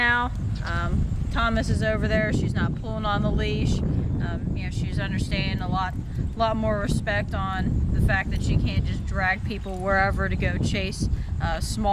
Thomas is over there. She's not pulling on the leash. She's understanding a lot more respect on the fact that she can't just drag people wherever to go chase a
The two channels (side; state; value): both; identical; correlation 1.00